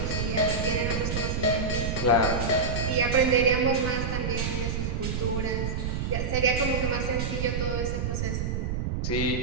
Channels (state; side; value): noise; right; rumble, 1 dB below the sound